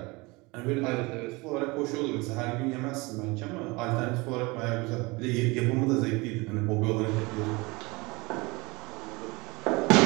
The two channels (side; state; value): left; quieter; 24.8 dB